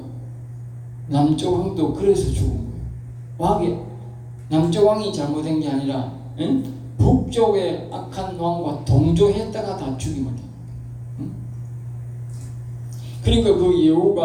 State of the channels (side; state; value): both; identical; correlation 1.00